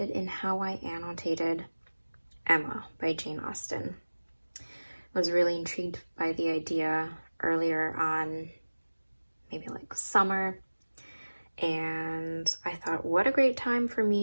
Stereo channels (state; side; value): inverted; both; correlation -1.00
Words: in how I annotated Emma by Jane Austen. I was really intrigued by the idea earlier on, maybe like summer, and I thought what a great time for